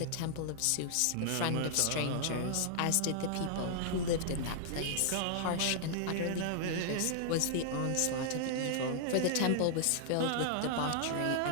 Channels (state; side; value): different; both; correlation -0.01